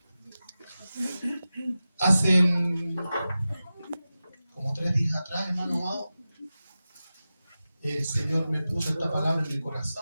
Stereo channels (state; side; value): inverted; both; correlation -0.94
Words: Hace como 3 días atrás, hermano amado, el Señor me puso esta palabra en mi